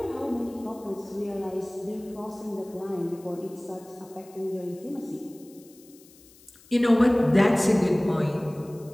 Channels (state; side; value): noise; left; hiss, 25 dB below the sound